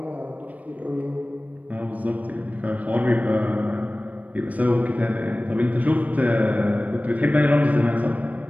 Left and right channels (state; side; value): late; left; 0.071 ms